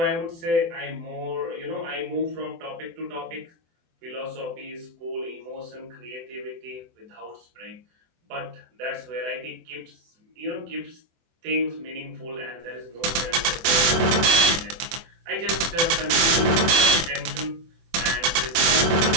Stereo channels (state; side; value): late; left; 24 ms